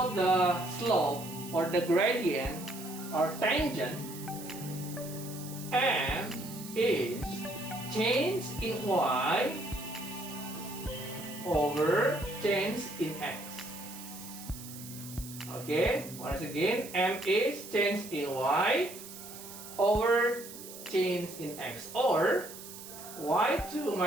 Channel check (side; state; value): right; noise; hiss, 13 dB below the sound